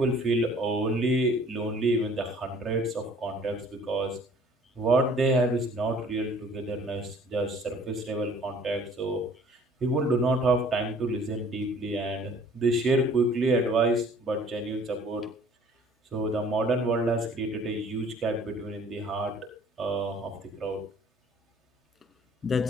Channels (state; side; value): normal; both; correlation 0.54